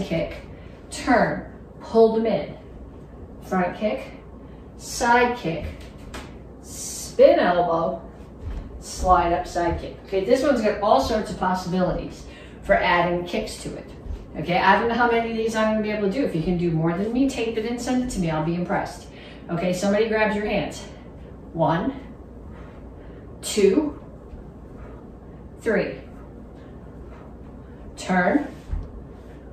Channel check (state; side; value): identical; both; correlation 1.00